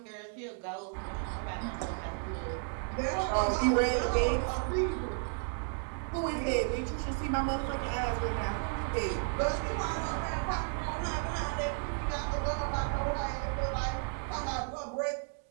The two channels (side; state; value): left; silent; 56 dB below the other